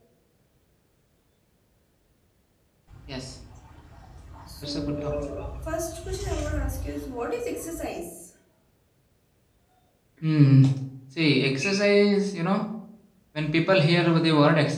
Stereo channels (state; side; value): identical; both; correlation 1.00